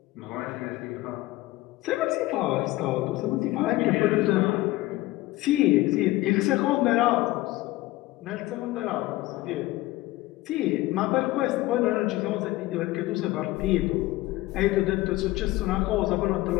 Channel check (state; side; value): quieter; right; 18.3 dB